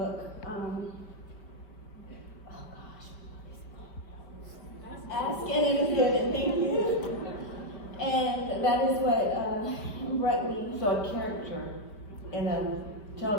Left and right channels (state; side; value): late; right; 4.5 ms